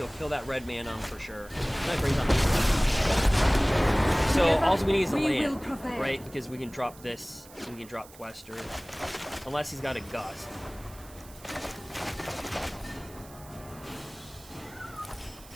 kill that red man on for sure. That brings on so all we need is a land, right? Because we can drop this, we can drop Quester, unless he's got a Gust.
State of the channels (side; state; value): right; noise; hiss, 21 dB below the sound